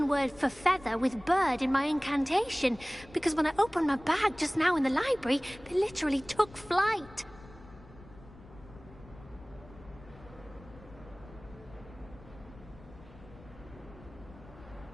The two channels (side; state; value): left; noise; rumble, 20 dB below the sound